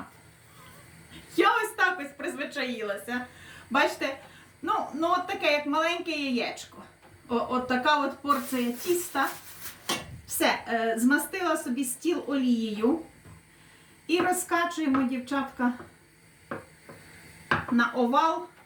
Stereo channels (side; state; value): both; identical; correlation 1.00